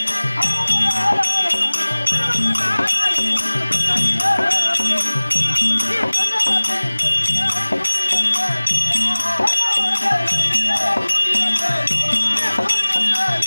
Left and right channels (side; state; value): both; inverted; correlation -1.00